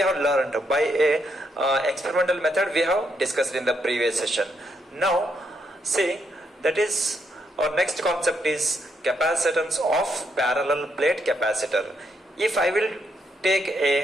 have learned by a experimental method we have discussed in the previous session. Now, see, that is our next concept is capacitance of parallel plate capacitor. If I will take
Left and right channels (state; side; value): normal; both; correlation 0.77